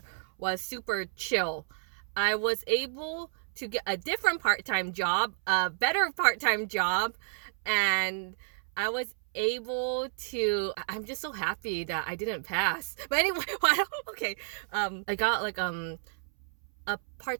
was super chill. I was able to get a different part-time job, a better part-time job, and I was able to, I'm just so happy that I didn't pass. But anyway, okay, I got a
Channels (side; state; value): left; silent; 57 dB below the other